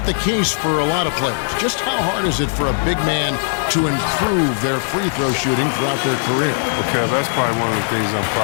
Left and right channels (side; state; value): right; silent; digital silence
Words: the case for a lot of players. Just how hard is it for a big man to improve their free throw shooting throughout their career? Okay, that's probably one of the things I'm